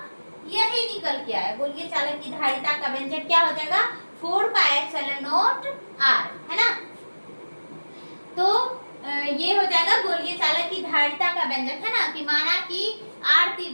यही निकल के आया, गोलीय चालक की धारिता का व्यंजक क्या हो जाएगा, 4 पाई एप्सिलॉन नॉट R है ना। तो ये हो जाएगा गोलीय चालक की धारिता का व्यंजक है ना, कि माना कि R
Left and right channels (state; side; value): inverted; both; correlation -1.00